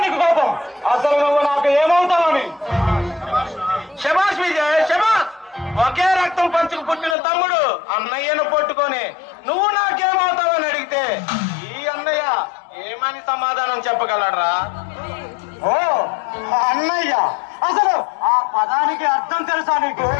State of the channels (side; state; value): right; drops out; at 7.2 s